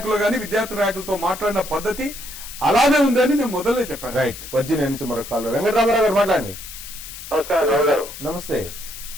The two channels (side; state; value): left; noise; hiss, 12 dB below the sound